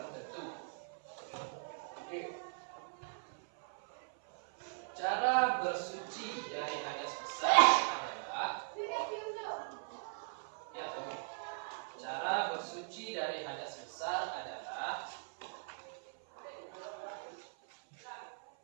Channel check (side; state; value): left; silent; 52 dB below the other